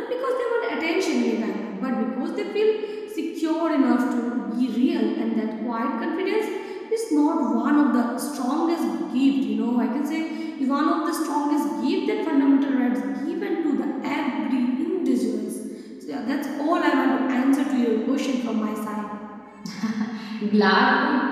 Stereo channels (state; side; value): identical; both; correlation 1.00